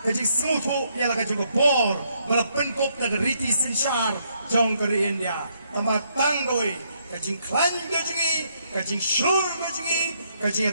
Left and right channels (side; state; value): both; inverted; correlation -0.74